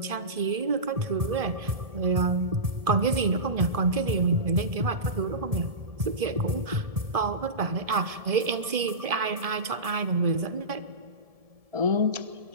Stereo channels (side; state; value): left; late; 1.7 ms